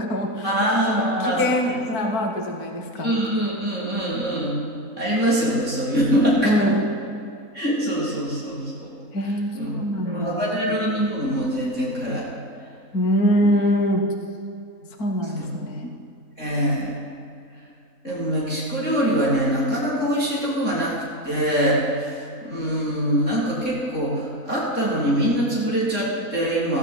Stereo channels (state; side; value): late; right; 3.6 ms